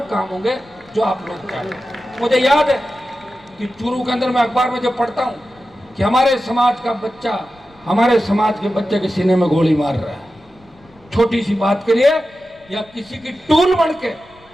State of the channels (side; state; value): left; noise; rumble, 28 dB below the sound